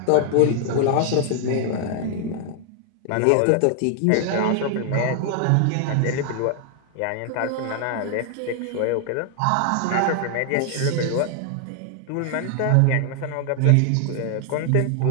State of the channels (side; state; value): both; different; correlation 0.00